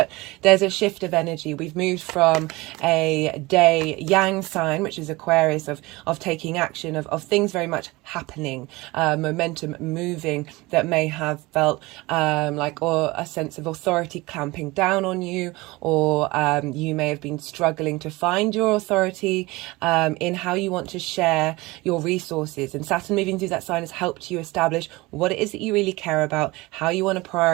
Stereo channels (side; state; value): left; quieter; 21.9 dB